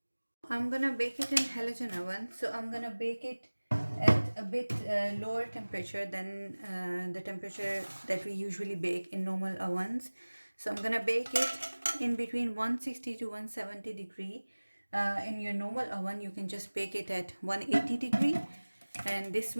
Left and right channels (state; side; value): inverted; both; correlation -1.00